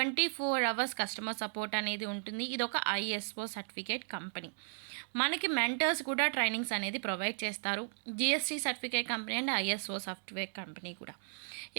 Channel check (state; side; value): silent; left; 54 dB below the other